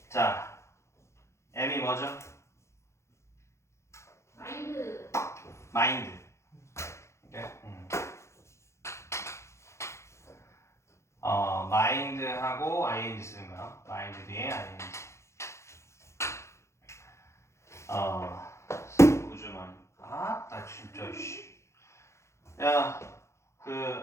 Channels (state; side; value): late; right; 0.14 ms